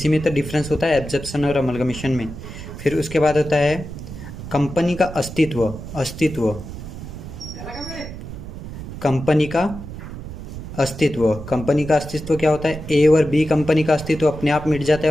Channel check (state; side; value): noise; right; rumble, 10 dB below the sound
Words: में तो डिफरेंस होता है एब्जॉर्प्शन और अमलगमिशन में। फिर उसके बाद होता है कंपनी का अस्तित्व। कंपनी का अस्तित्व क्या होता है, ए और बी कंपनी का अस्तित्व अपने आप मिट जाता